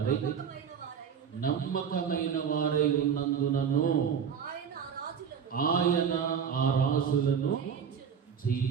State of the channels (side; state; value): left; quieter; 7.4 dB